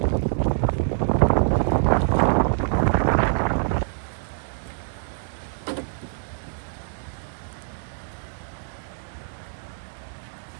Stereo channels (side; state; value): left; silent; digital silence